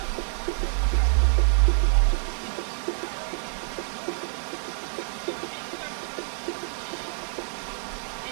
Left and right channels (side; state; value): left; silent; digital silence